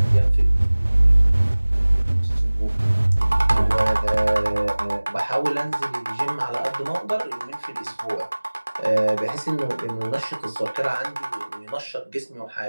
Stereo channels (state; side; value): inverted; both; correlation -1.00